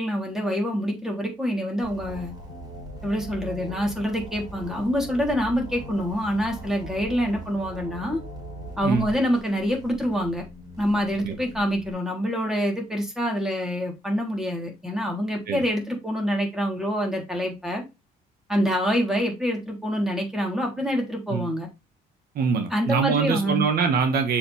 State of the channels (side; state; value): both; normal; correlation 0.71